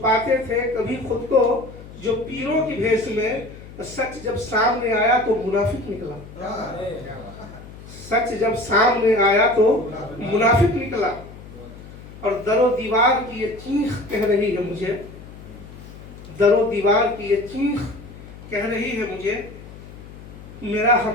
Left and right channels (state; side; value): noise; left; hum, 16 dB below the sound